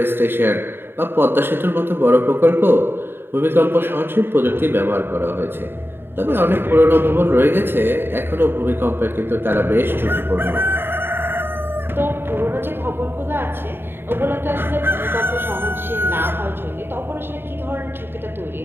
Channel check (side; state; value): left; late; 0.11 ms